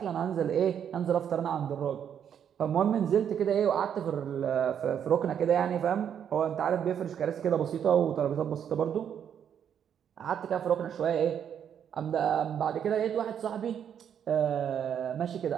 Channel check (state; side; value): quieter; left; 8.6 dB